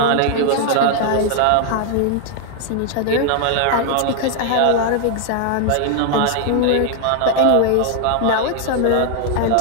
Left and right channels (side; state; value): both; different; correlation 0.00